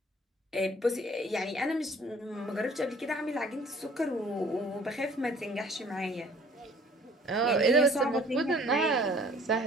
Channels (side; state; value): both; normal; correlation 0.54